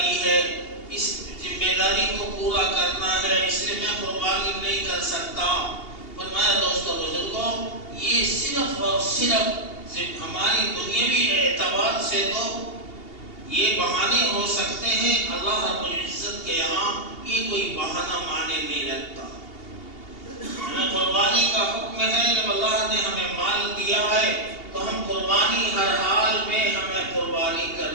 ہے، اس ذمہ داری کو پورا کرنا ہے، اس لیے میں قربانی نہیں کر سکتا۔ فرمایا دوستو بزرگوں، یہ صرف اور صرف ہماری دنیاوی اعتبار سے تو یہ بہانے ہو سکتے ہیں، اللہ رب العزت کے یہاں یہ کوئی بہانہ معنی نہیں رکھتا۔ ہمیں قربانی کا حکم ہے، جب اللہ نے ہمیں مال دیا ہے تو ہم قربانی ہر حال میں ہمیں قربانی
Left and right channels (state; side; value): late; right; 2.8 ms